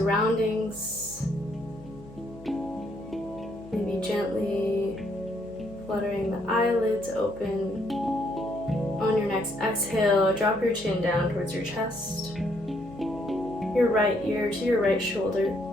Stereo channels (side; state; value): left; noise; hum, 20 dB below the sound